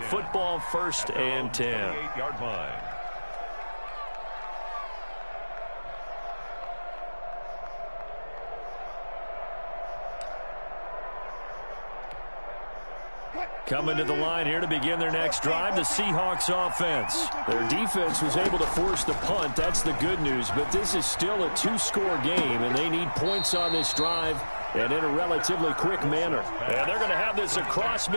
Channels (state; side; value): inverted; both; correlation -1.00